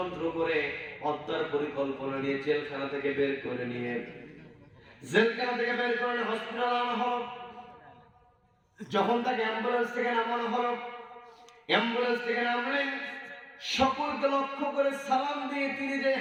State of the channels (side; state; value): both; identical; correlation 1.00